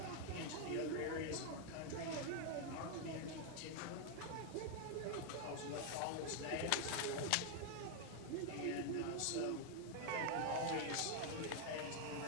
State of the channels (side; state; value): both; different; correlation 0.00